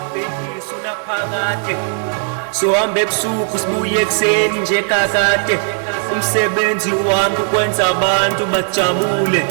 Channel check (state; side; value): silent; left; 57 dB below the other